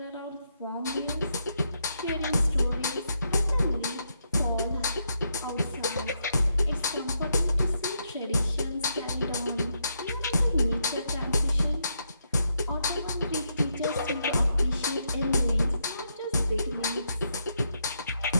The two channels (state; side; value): inverted; both; correlation -0.79